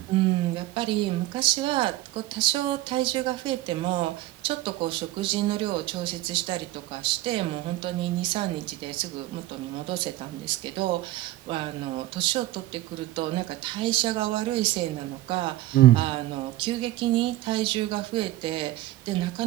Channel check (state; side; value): quieter; left; 16.0 dB